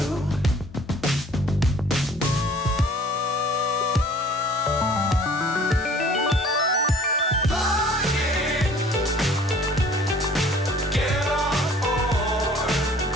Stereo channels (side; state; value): both; normal; correlation 0.52